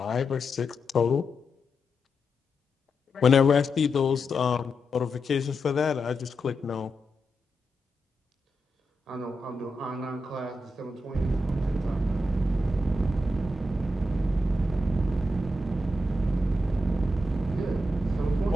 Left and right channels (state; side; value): normal; both; correlation 0.86